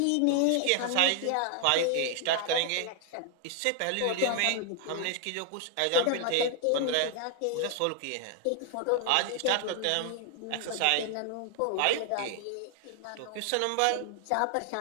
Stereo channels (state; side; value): different; both; correlation 0.00